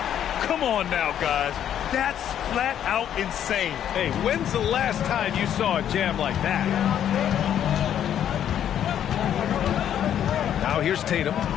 Come on now, guys. That's flat out insane. Hey, when's the last time you saw a jam like that? Now here's Tatum.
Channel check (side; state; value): right; quieter; 10.0 dB